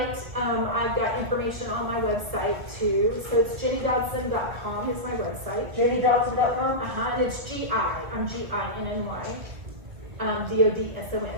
I've got information on my website too. So it's jennydodson.com is my website. JDDodson.com? And it's G-I. I'm G-I-N-N-Y.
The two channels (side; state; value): left; late; 1.8 ms